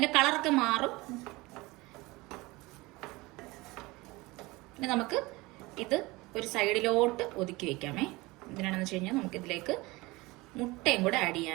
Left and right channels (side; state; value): left; quieter; 22.2 dB